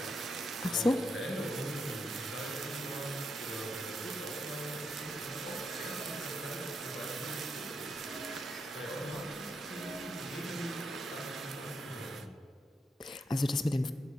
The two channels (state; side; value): normal; both; correlation 0.81